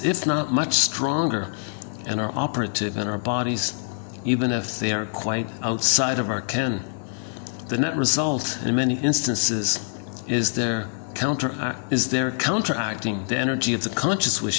if not much stronger, and are operative in our bodies, even if they are quite outside of our ken. The net result, in many instances, is their counteracting the energy of the conscious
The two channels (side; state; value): right; silent; 62 dB below the other